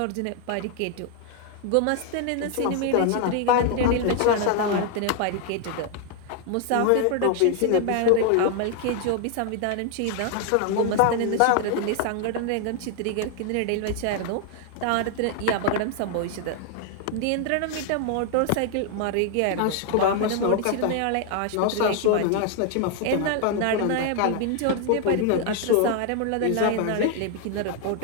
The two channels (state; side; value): different; both; correlation 0.00